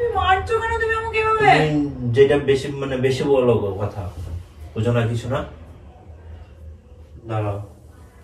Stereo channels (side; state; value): both; identical; correlation 1.00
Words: মারছো কেন তুমি আমাকে এভাবে? তুমি যেটা বেশি মানে বেশি বলো কথা, বুঝো না কিছু না। দাঁড়াও।